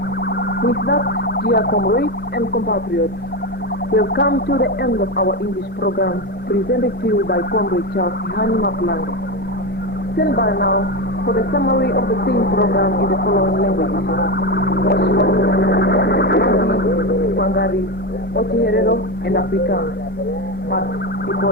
With that, dear comrades and compatriots, we have come to the end of our English program, presented to you by Comrade Charles Hani Maplanga. Stand by now for the summary of the same program in the following languages: Mangari, Ochiherero, and Afrikaans. But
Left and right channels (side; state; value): both; normal; correlation 0.15